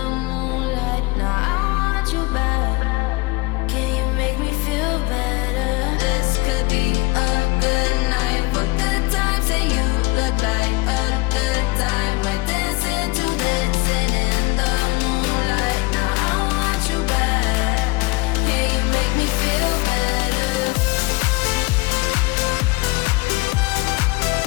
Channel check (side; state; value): right; quieter; 23.5 dB